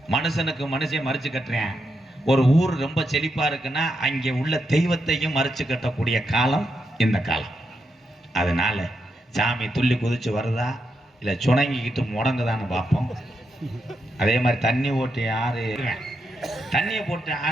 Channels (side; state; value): both; normal; correlation 0.84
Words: மனுஷனுக்கு மனுஷன் மறிச்சு கட்டுறேன். ஒரு ஊர் ரொம்ப செழிப்பா இருக்குன்னா அங்கே உள்ள தெய்வத்தையும் மறிச்சு கட்டக்கூடிய காலம் இந்த காலம். அதனால சாமி துள்ளி குதிச்சு வருதா இல்லை சுணங்கிக்கிட்டு முடங்குதான்னு பார்ப்போம். அதே மாதிரி தண்ணி ஓட்டி ஆறு தண்ணியை போட்டு